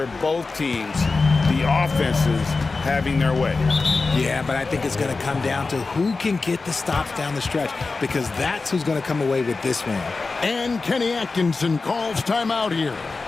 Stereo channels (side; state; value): right; quieter; 4.0 dB